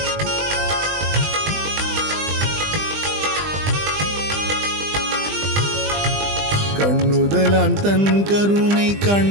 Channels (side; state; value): left; late; 20 ms